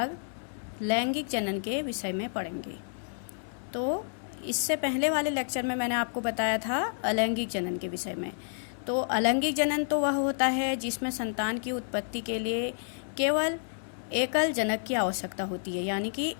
लैंगिक जनन के विषय में पढ़ेंगे। तो इससे पहले वाले लेक्चर में मैंने आपको बताया था अलैंगिक जनन के विषय में। तो अलैंगिक जनन तो वह होता है जिसमें संतान की उत्पत्ति के लिए केवल एकल जनक की आवश्यकता होती है, यानी कि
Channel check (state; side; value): silent; right; 58 dB below the other